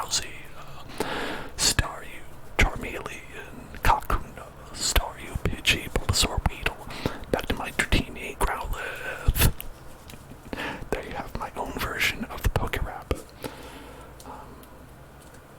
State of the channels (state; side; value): identical; both; correlation 1.00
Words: Staryu, Charmeleon, Kakuna, Staryu, Pidgey, Bulbasaur, Weedle, back to my Dratini, Growlithe. There you have my own version of the Pokérap.